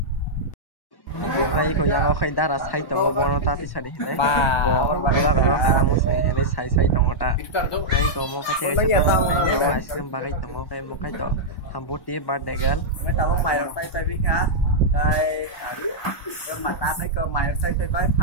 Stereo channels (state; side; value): late; right; 1.1 ms